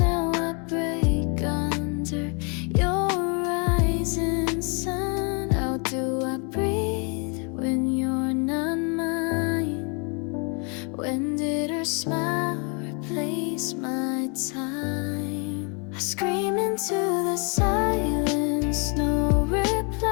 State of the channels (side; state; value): right; quieter; 35.7 dB